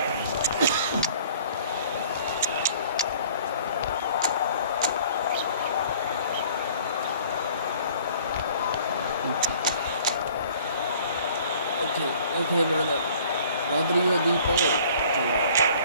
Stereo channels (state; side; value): inverted; both; correlation -0.53